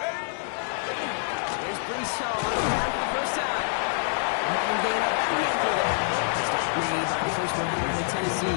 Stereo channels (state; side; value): silent; right; 60 dB below the other